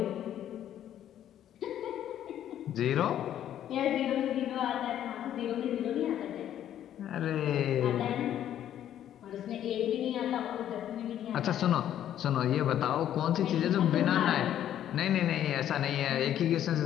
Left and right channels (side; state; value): right; quieter; 11.0 dB